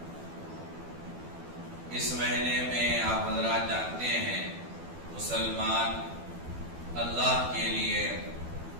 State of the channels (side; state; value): left; late; 12 ms